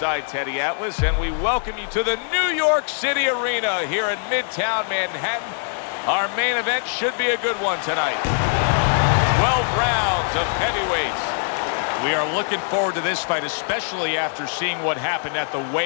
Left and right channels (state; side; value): silent; right; 64 dB below the other